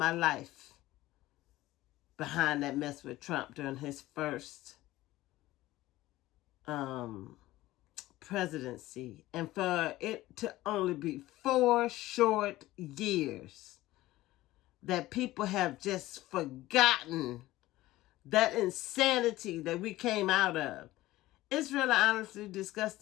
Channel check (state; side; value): quieter; right; 16.9 dB